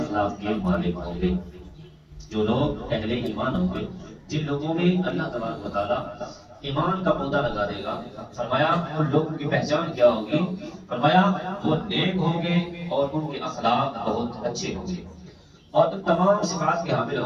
کے مالک ہوں گے، جو لوگ اہل ایمان ہوں گے، جن لوگوں میں اللہ تبارک و تعالیٰ ایمان کا پودا لگا دے گا، فرمایا ان لوگوں کی پہچان کیا ہوگی؟ فرمایا وہ نیک ہوں گے اور ان کے اخلاق بہت اچھے ہوں گے اور ان تمام صفات کے حامل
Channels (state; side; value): identical; both; correlation 1.00